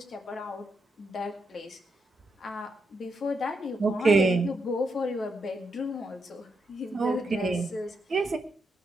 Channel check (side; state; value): both; normal; correlation 0.82